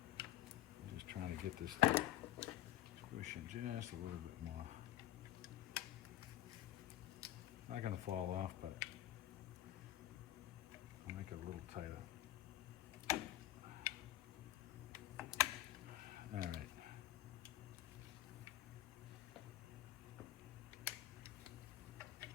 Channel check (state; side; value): quieter; right; 14.5 dB